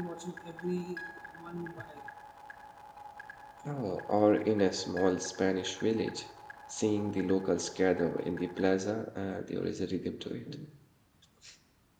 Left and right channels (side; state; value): both; identical; correlation 1.00